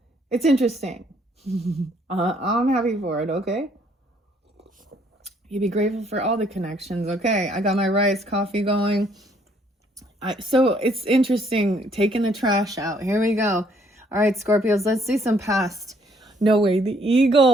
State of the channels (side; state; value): both; normal; correlation 0.66